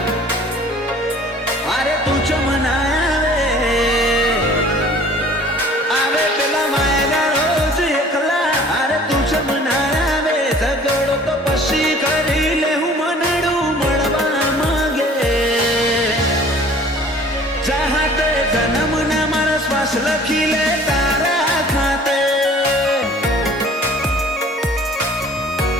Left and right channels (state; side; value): normal; both; correlation 0.50